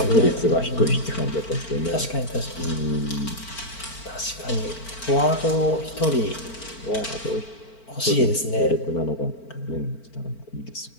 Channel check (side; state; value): right; late; 4.4 ms